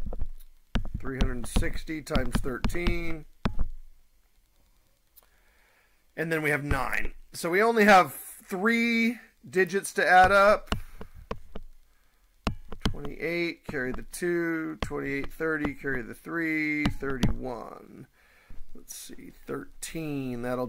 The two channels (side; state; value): both; identical; correlation 1.00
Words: $360 times 13. And then we have 9. So we only have 3 digits to add up. 28, carry the 2, 28, 30, carry the 3, 31. Let's see, 13, that'll